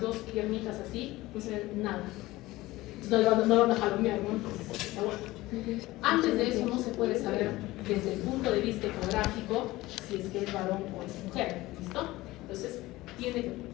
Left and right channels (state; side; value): quieter; right; 18.6 dB